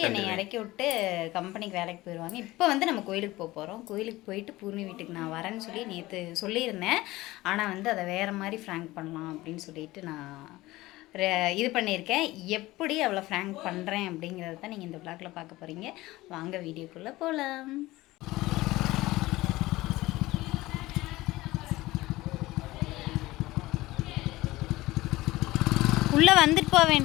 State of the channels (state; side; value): quieter; right; 18.6 dB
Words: என்னை இறக்கி விட்டு கம்பெனிக்கு வேலைக்கு போயிடுவாங்க. இப்போ வந்து நம்ம கோயிலுக்கு போக போகிறோம். கோயிலுக்கு போயிட்டு பூர்ணி வீட்டுக்கு நான் வரேன்னு சொல்லி நேற்று சொல்லியிருந்தேன். ஆனால் வந்து அதை வேறு மாதிரி ஃப்ராங்க் பண்ணலாம் அப்படின்னு சொல்லிட்டு நான் இது பண்ணியிருக்கேன். எப்படி அவளை ஃப்ராங்க் பண்ணுறேன் அப்படிங்கிறத தான் நீங்கள் இந்த விளாகில் பார்க்க போகிறீங்க. வாங்க வீடியோக்குள்ளே போகலாம். உள்ளே வந்துட்டு போக